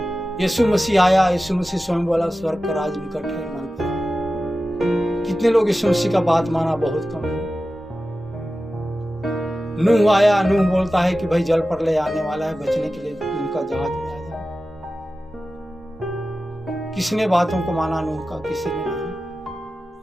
यीशु मसीह आया, यीशु मसीह स्वयं बोला स्वर्ग का राज निकट है, मन पर। कितने लोग यीशु मसीह का बात माना? बहुत कम लोग। नूह आया, नूह बोलता है कि भाई जल प्रलय आने वाला है, बचने के लिए उनका जहाज में आ जाए। किसने बातों को माना? नूह का किसी ने नहीं।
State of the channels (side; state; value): both; normal; correlation 0.94